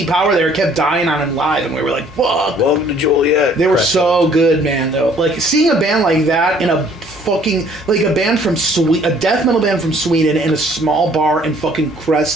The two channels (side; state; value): both; normal; correlation 0.59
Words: shitty power there, it kept dying on him live, and we were like, fuck. Welcome to Joliet. They were Correct. so good, man, though. Like, seeing a band like that in a fucking, like a band from a death metal band from Sweden in a small bar in fucking